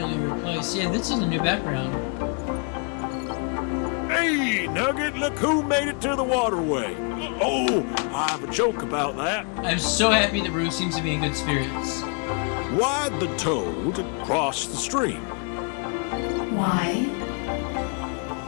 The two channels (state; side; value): quieter; right; 38.5 dB